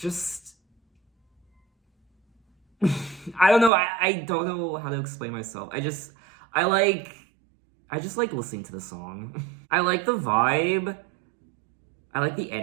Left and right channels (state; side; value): drops out; left; at 3.7 s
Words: I don't know. I don't know how to explain myself. I just like listening to the song. I like the vibe. I like the